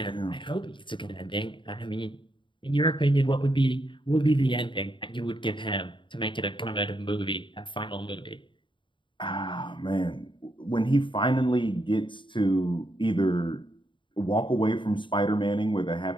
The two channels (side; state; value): right; late; 0.24 ms